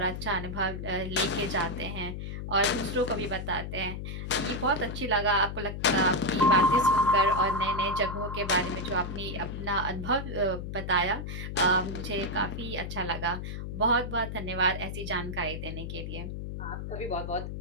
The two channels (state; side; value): noise; left; hum, 6 dB below the sound